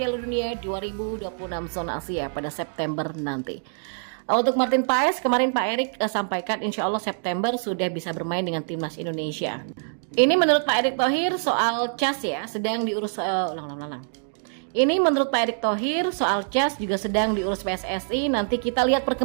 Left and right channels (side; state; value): left; silent; digital silence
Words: Dunia 2026 zona Asia pada September nanti. Untuk Martin Paes, kemarin Pak Erick sampaikan insya Allah September sudah bisa bermain dengan timnas Indonesia. Ini menurut Pak Erick Thohir soal CAS ya, sedang diurus Ini menurut Pak Erick Thohir soal CAS juga sedang diurus PSSI, nanti kita lihat